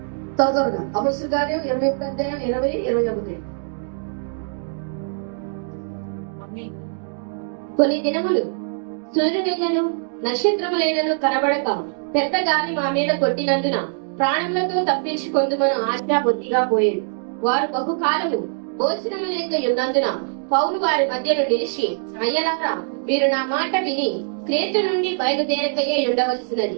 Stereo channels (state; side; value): silent; left; digital silence